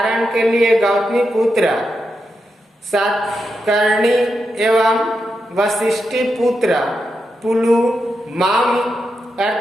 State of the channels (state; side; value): normal; both; correlation 0.86